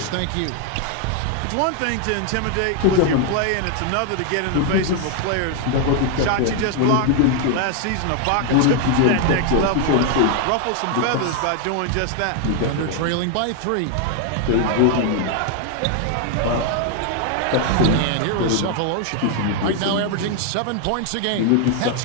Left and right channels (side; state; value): both; different; correlation 0.00